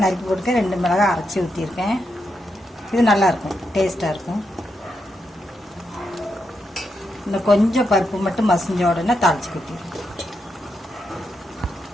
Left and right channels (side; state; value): both; normal; correlation 0.83